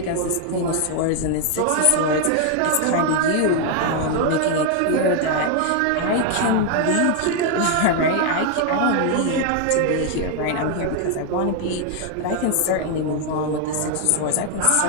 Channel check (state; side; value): different; both; correlation 0.00